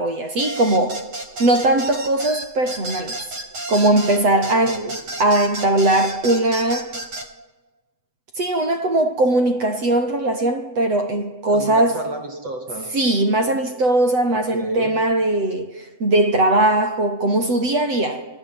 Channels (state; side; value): late; left; 8.0 ms